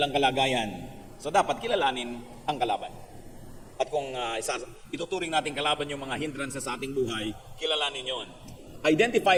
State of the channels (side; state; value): both; identical; correlation 1.00